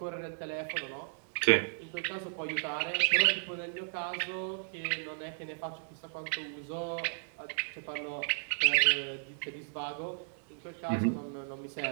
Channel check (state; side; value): silent; left; digital silence